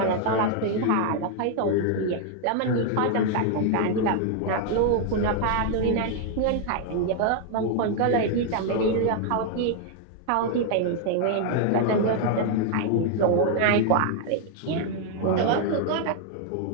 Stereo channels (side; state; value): both; different; correlation 0.00